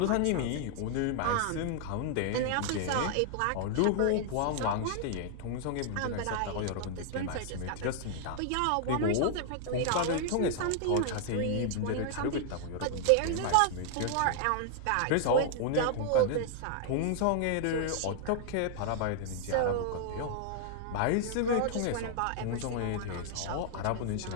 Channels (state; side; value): different; both; correlation 0.00